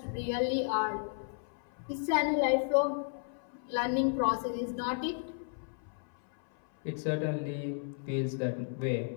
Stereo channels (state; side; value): silent; right; 55 dB below the other